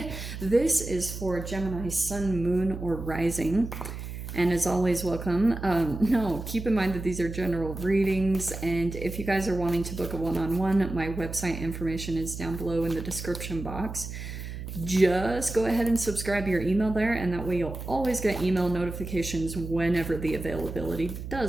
This is for Gemini sun, moon, or rising. And as always, welcome. Keep in mind that these are general readings. And if you guys are wanting to book a one-on-one, my website information is down below in the description box. Just go ahead and subscribe your email there, and that way you'll always get email notifications whenever the availability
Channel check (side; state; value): right; noise; hum, 8 dB below the sound